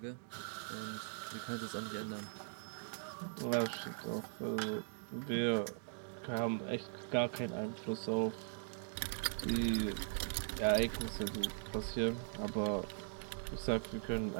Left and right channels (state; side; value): silent; left; digital silence